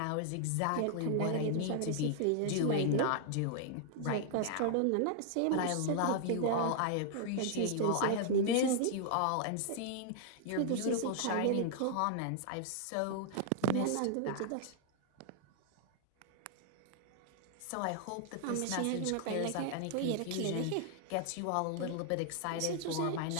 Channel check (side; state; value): both; different; correlation 0.00